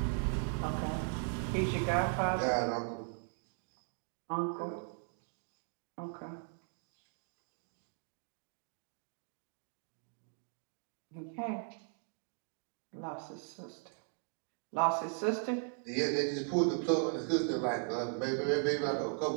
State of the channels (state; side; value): silent; left; 52 dB below the other